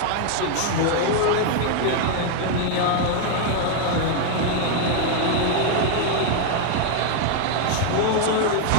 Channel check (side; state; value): both; different; correlation 0.00